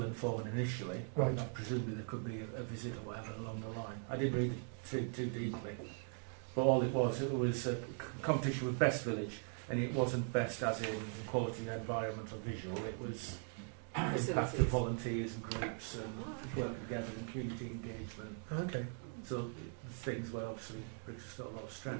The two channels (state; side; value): silent; left; 51 dB below the other